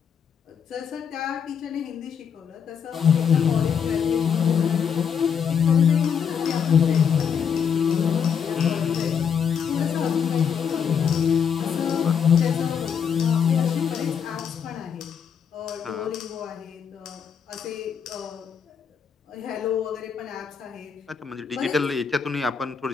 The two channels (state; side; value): quieter; right; 7.2 dB